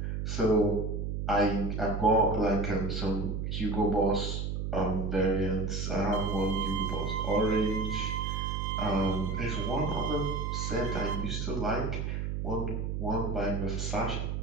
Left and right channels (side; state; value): right; noise; hum, 2 dB below the sound